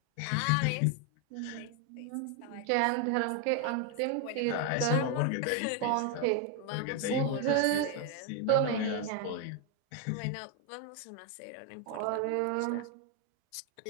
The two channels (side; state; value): both; different; correlation 0.01